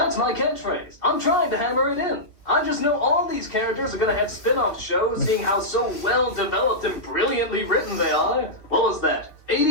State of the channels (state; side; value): late; right; 2.7 ms